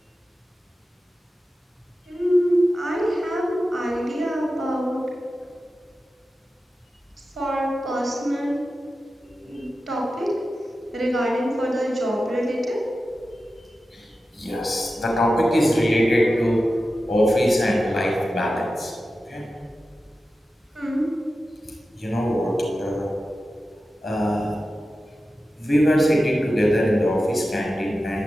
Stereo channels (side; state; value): both; normal; correlation 0.93